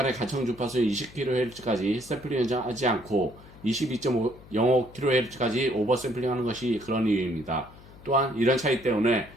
가청 주파수 20kHz까지 샘플링하지 않고 22.05kHz까지 오버샘플링하는 것이 그런 이유입니다. 또한 이런 차이 때문에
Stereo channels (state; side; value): noise; left; hum, 21 dB below the sound